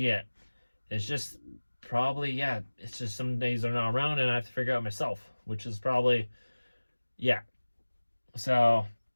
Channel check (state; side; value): inverted; both; correlation -1.00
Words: It's just probably, yeah, it's just some days they're not around and I have to figure out myself, which is probably, yeah. So